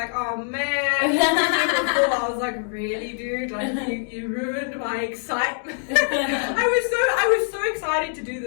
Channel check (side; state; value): right; silent; 61 dB below the other